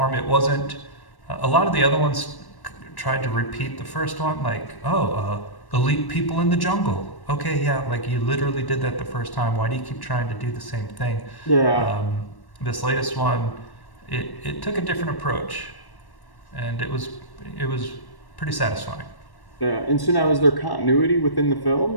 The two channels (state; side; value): late; right; 1.1 ms